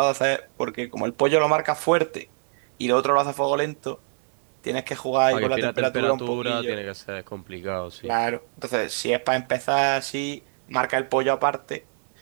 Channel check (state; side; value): silent; left; digital silence